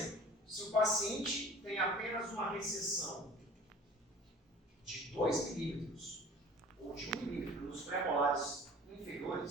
se o paciente tem apenas uma recessão de 2 milímetros ou de 1 milímetro nos pré-molares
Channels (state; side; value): normal; both; correlation 0.45